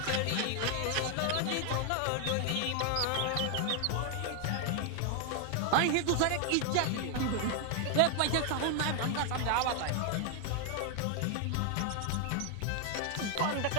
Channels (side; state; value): both; different; correlation 0.00